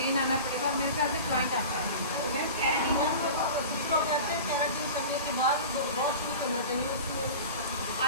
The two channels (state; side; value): inverted; both; correlation -0.34